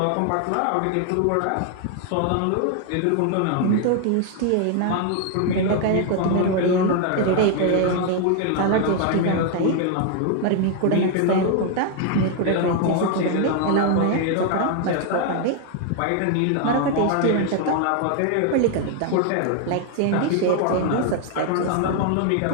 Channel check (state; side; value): different; both; correlation 0.00